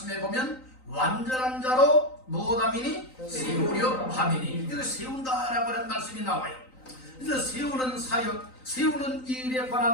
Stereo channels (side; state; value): right; late; 3.9 ms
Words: 보면 완전한 자로 무엇함이니? 세우려 함이니. 이거 세운다라고 하는 말씀이 나와요. 그래서 세우는 사역, 세우는 일에